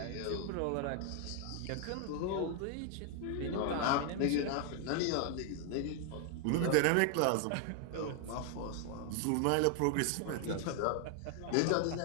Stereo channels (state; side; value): different; both; correlation 0.00